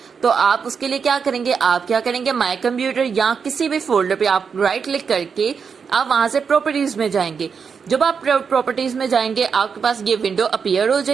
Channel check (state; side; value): quieter; left; 6.1 dB